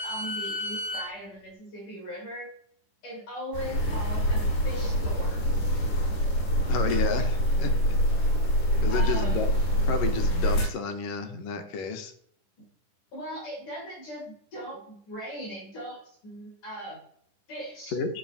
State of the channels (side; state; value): right; late; 10 ms